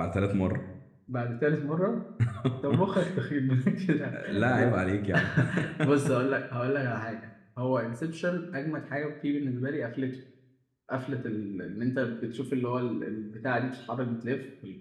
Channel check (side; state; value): both; identical; correlation 1.00